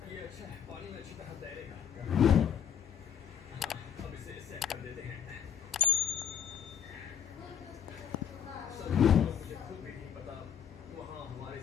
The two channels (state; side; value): quieter; right; 8.6 dB